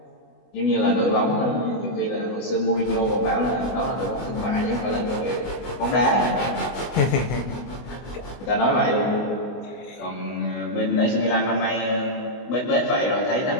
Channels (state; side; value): late; right; 24 ms